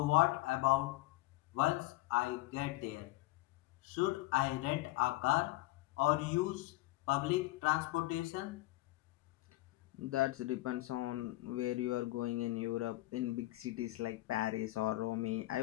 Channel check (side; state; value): right; quieter; 18.8 dB